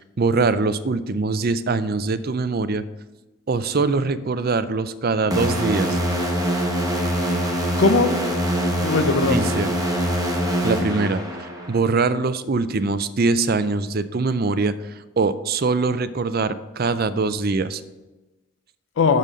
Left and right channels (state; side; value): normal; both; correlation 0.36